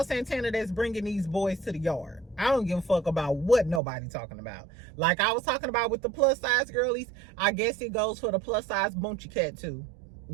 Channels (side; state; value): left; drops out; at 3.8 s